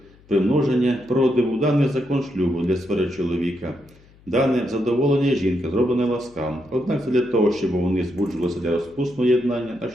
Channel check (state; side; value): noise; left; hum, 27 dB below the sound